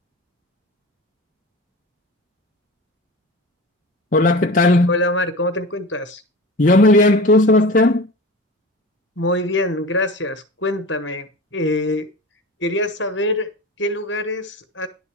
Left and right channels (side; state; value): both; normal; correlation 0.33